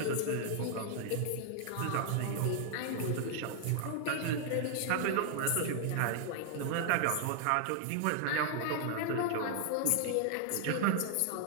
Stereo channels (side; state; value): both; different; correlation -0.01